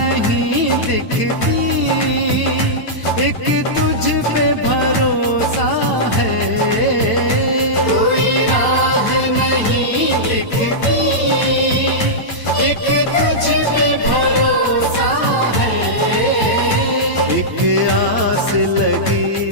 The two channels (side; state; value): right; late; 9.0 ms